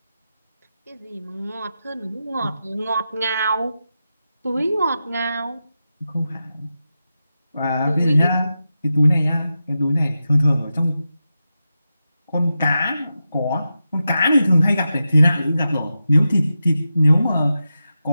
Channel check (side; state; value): both; inverted; correlation -0.90